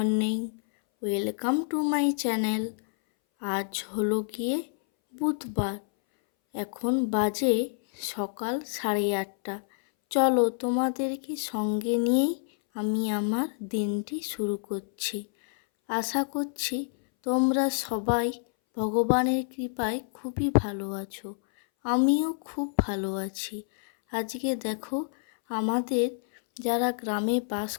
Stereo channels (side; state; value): right; silent; 59 dB below the other